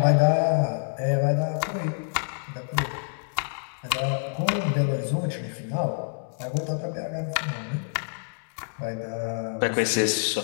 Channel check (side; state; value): right; silent; digital silence